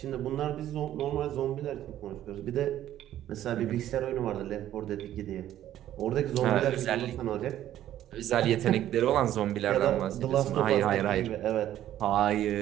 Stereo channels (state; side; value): quieter; left; 12.3 dB